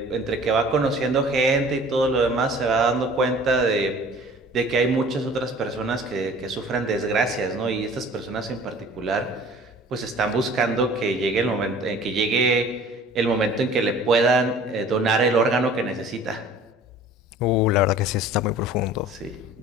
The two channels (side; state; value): both; normal; correlation 0.47